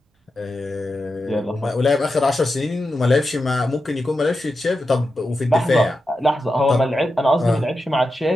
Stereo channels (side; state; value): both; normal; correlation 0.89